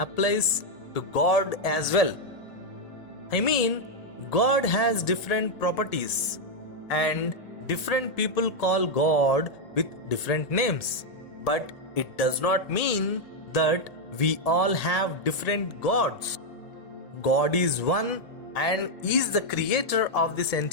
to God as well. I mean, God has different properties, and different people call God with different names. But it does not mean that we all have different gods. God is one and is the creator of this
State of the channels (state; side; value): late; right; 1.7 ms